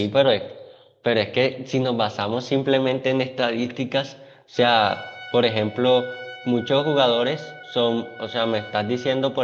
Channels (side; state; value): both; identical; correlation 1.00